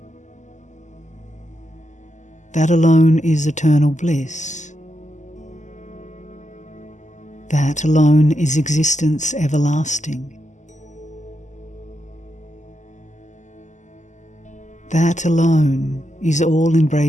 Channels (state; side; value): late; right; 0.34 ms